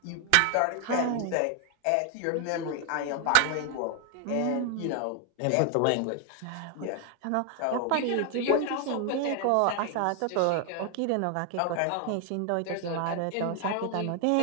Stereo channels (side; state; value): both; different; correlation 0.00